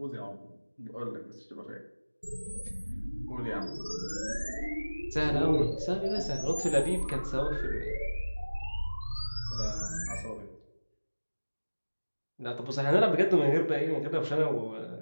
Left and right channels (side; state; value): both; inverted; correlation -1.00